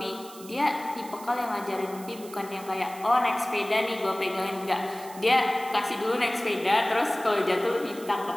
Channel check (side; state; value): right; noise; hiss, 18 dB below the sound